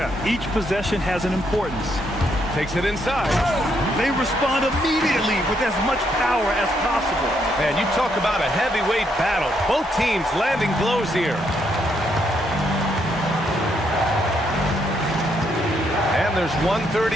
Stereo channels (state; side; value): normal; both; correlation 0.75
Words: each possession has an importance. Takes it inside. They respond immediately with as much power as possible. Man, you talk about a heavyweight battle. Both teams landing blows here. And there's